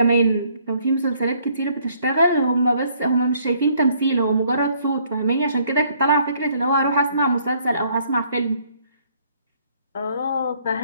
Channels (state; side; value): inverted; both; correlation -0.65